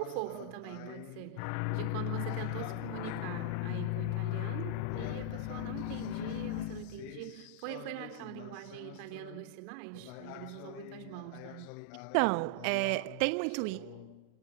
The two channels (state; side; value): different; both; correlation -0.01